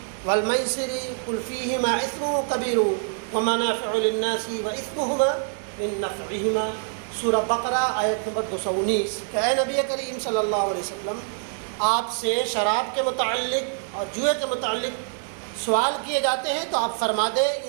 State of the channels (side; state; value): left; silent; 62 dB below the other